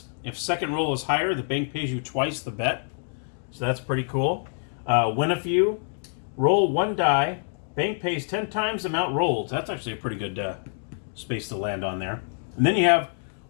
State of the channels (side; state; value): right; silent; digital silence